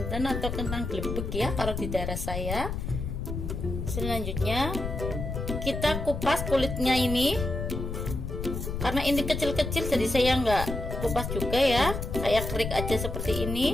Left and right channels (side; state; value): left; noise; rumble, 4 dB below the sound